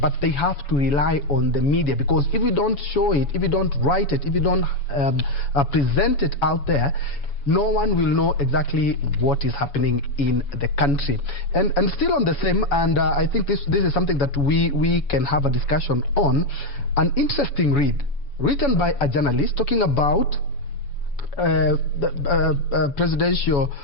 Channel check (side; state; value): right; late; 7.1 ms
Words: they have to rely on the media, because if you don't show it, if you don't write it, if you don't present it out there, no one will know exactly what is happening in the country. And still on the same, and I think this is something that we can have a discussion on, an interesting read written by a journalist talking about the presidential